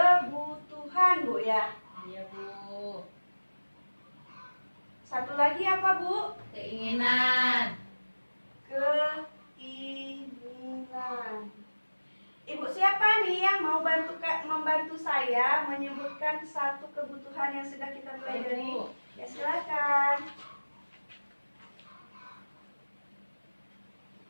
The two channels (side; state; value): both; inverted; correlation -1.00